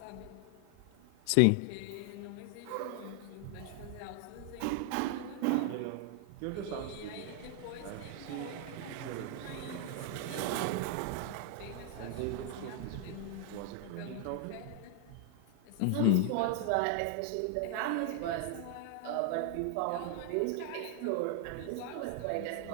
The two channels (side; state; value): both; different; correlation 0.00